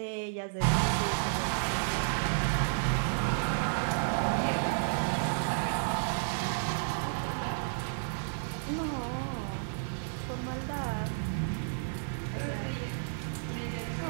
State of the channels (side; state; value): left; silent; 56 dB below the other